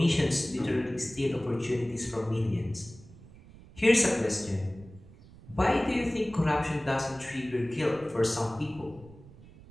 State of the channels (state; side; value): noise; right; rumble, 21 dB below the sound